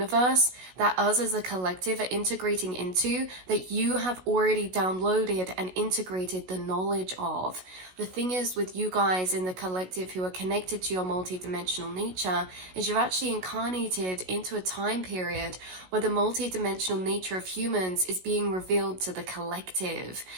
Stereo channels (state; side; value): late; left; 16 ms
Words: that us as a collective are integrating into, that you have already downloaded and integrated the knowledge of. The thing is with you guys in the collective who are connected to your multidimensional nature is you've actually incarnated into a time period where the multidimensional nature of humans is being revealed to the collective.